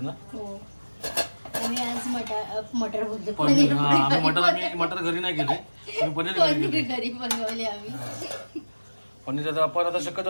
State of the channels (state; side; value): inverted; both; correlation -1.00